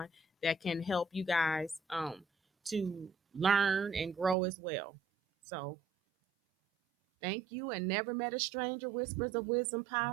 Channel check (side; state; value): left; drops out; at 4.4 s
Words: that can help you guys to learn and grow as well. So thank you, and Never Met a Stranger Whispers of Wisdom